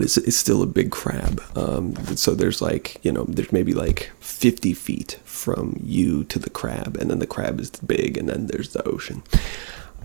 it's still a big crab. So there's there's maybe like 50 feet from you to the crab, and then the crab is big, and then there's the ocean.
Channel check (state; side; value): silent; left; 63 dB below the other